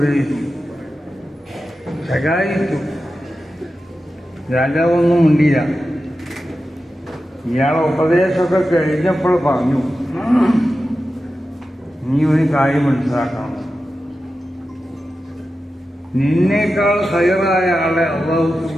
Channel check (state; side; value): normal; both; correlation 0.92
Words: ശകാരിച്ചു. രാജാവൊന്നും മിണ്ടിയില്ല. ഇയാളെ ഉപദേശമൊക്കെ കഴിഞ്ഞപ്പോൾ പറഞ്ഞു, നീ ഒരു കാര്യം മനസ്സിലാക്കണം, നിന്നേക്കാൾ ഹൈറായ ആളെ അല്ലാഹു